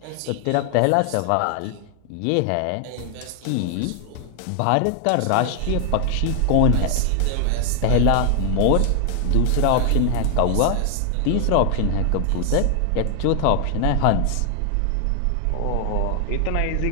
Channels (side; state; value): both; different; correlation 0.00